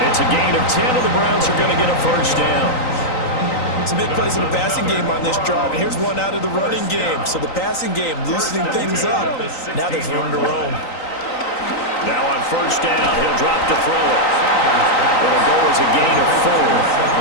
It's a gain of 10, and the Browns are going to get a first down. Some big plays in the passing game on this drive, and here's one out of the running game. So the passing game loosening things up. Now there's room to roam. Now on first down, he'll drop to throw it. It'll go as a gain of 4,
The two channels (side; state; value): right; late; 3.9 ms